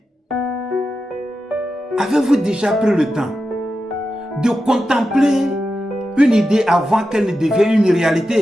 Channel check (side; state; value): both; normal; correlation 0.90